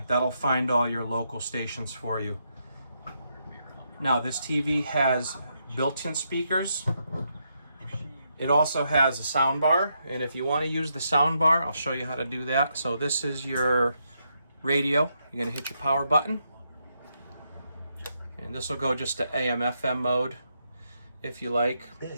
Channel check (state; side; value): inverted; both; correlation -0.80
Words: That'll find all your local stations for you. Now, this TV has built-in speakers. It also has a sound bar, and if you want to use the sound bar, I'll show you how to do that. So this is your radio. You're going to hit your power button, and this will go just to AM/FM mode if you like.